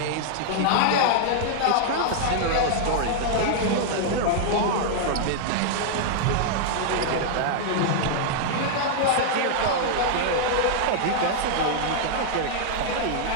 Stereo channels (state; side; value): different; both; correlation -0.01